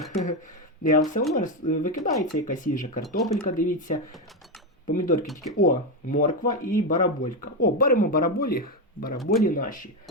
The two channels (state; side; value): normal; both; correlation 0.10